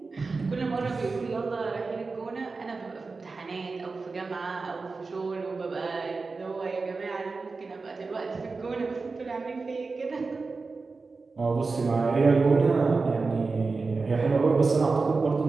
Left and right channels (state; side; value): quieter; left; 4.1 dB